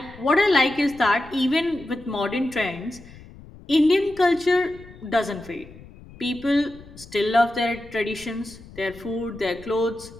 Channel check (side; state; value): left; noise; rumble, 20 dB below the sound